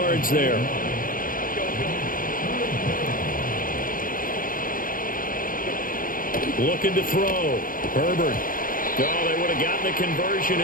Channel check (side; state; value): right; late; 0.40 ms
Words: there. Looking to throw. Herbert. Oh, they would have gotten the conversion